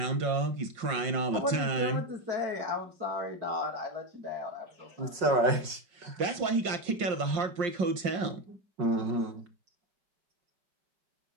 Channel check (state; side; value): late; left; 5.6 ms